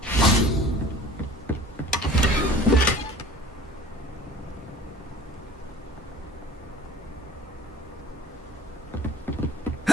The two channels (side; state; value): both; normal; correlation 0.46